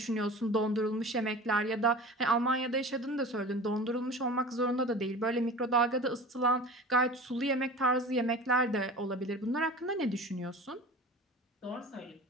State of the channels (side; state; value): both; normal; correlation 0.37